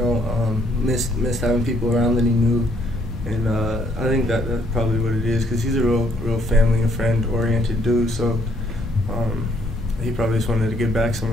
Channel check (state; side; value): normal; both; correlation 0.67